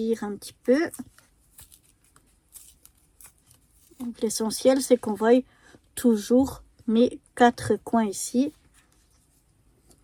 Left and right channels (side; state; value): both; identical; correlation 1.00